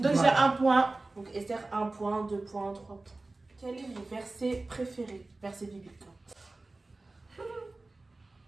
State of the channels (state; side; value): quieter; left; 3.2 dB